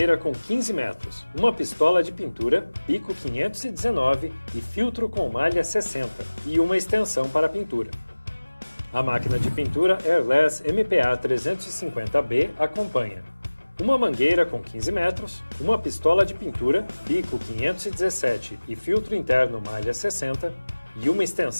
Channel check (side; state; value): both; inverted; correlation -1.00